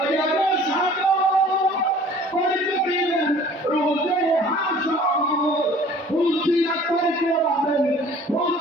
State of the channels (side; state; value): both; normal; correlation 0.50